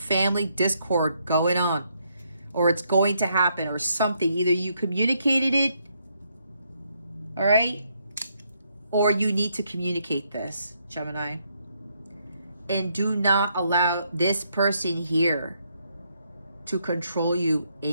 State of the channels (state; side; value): inverted; both; correlation -0.75